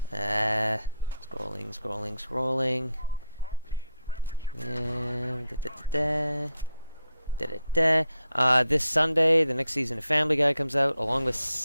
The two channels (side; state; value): both; inverted; correlation -0.80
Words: This Sunday, the next season of Family Guy comes out, along